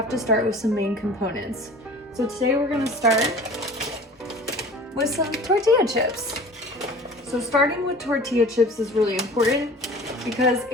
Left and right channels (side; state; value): both; normal; correlation 0.43